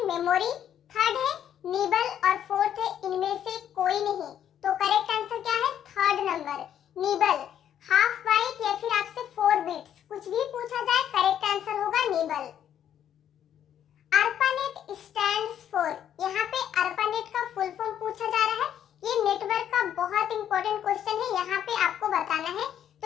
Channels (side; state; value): right; quieter; 9.9 dB